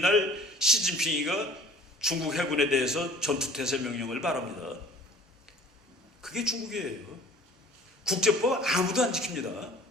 시진핑이가 중국 해군에 대해서 전투태세 명령을 바랍니다. 그게 중국이에요. 국제법 아무도 안 지킵니다.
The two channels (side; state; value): both; normal; correlation 0.49